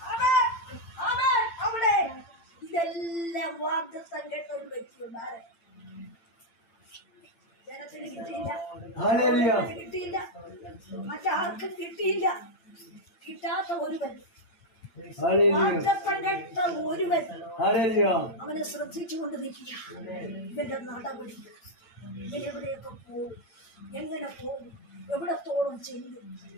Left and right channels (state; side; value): late; right; 8.8 ms